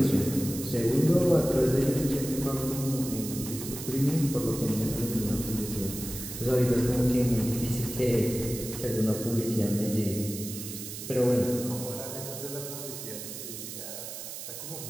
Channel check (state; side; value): noise; right; hiss, 9 dB below the sound